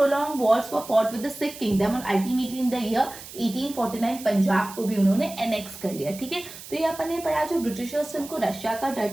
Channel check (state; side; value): noise; right; hiss, 14 dB below the sound